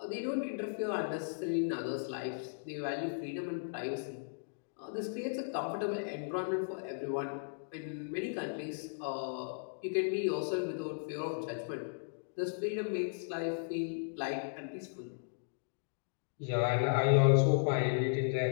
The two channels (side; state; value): right; silent; digital silence